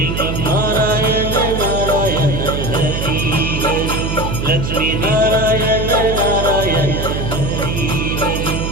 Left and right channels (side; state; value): right; noise; hum, 3 dB below the sound